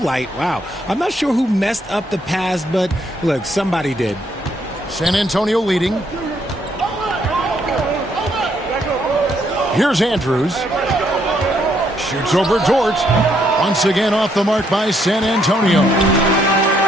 Wow. I'm not sure who messed up the pass, but look, somebody did. San Antonio leading. Here's Andrews. Shoots over Dort. Once again off the mark by San Antonio.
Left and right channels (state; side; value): normal; both; correlation 0.72